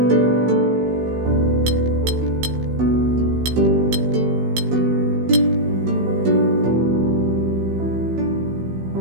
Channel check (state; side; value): late; left; 16 ms